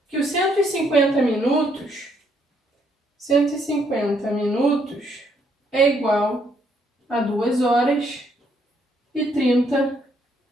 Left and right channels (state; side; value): normal; both; correlation 0.71